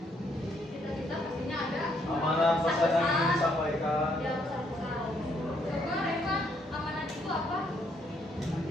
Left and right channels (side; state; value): both; normal; correlation 0.71